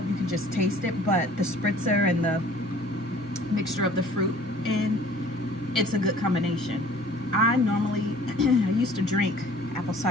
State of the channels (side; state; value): both; normal; correlation 0.51